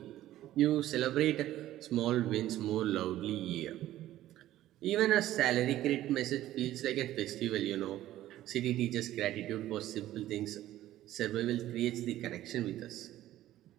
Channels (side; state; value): left; quieter; 14.0 dB